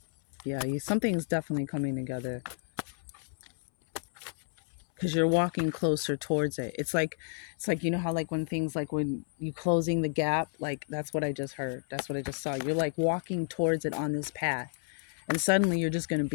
Yeah, something's definitely coming together, because you're walking closer towards it. It's like how, like, when things, like when you closing the gap, like, that's what I just heard. That's what I just saw. You're like walking towards it on this path, and suddenly you're just going to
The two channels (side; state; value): right; silent; 57 dB below the other